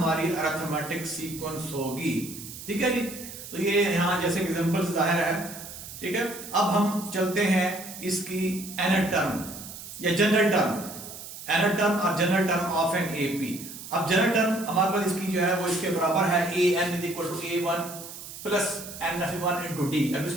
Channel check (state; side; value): noise; right; hiss, 12 dB below the sound